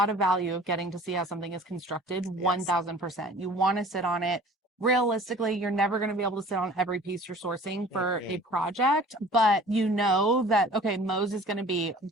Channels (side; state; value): both; normal; correlation 0.47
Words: of value of getting to see how something is constructed. 1000%. You want to sit on it. Realistically, you're never going to be able to sit on every piece you're sourcing for a project, but you know that, okay, Mo's is going to be